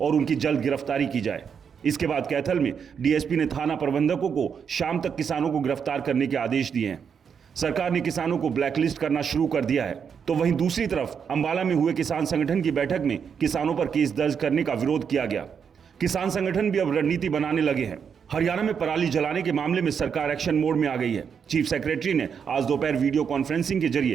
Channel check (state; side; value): quieter; left; 6.9 dB